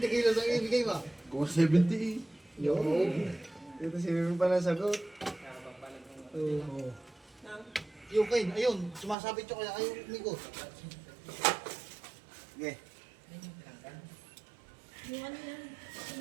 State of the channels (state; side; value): drops out; left; at 9.2 s